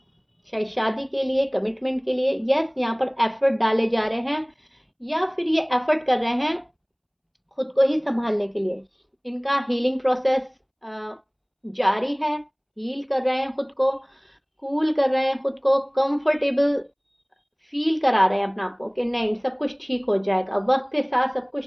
शादी के लिए, कमिटमेंट के लिए। यस, यहाँ पर एफर्ट डाले जा रहे हैं या फिर ये एफर्ट कर रहे हैं खुद को ही संभालने के लिए। इनका हीलिंग प्रोसेस जारी है, हील कर रहे हैं खुद को, कूल कर रहे हैं खुद को, कंफर्टेबल फील करा रहे हैं अपने आप को कि नहीं सब कुछ ठीक हो जाएगा, वक्त के साथ सब कुछ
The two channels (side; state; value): both; identical; correlation 1.00